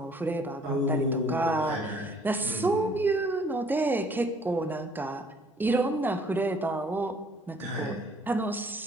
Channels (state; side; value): normal; both; correlation 0.59